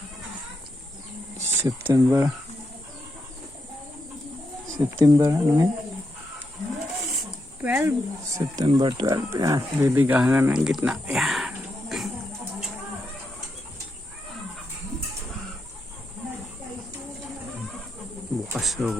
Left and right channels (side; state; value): both; normal; correlation 0.83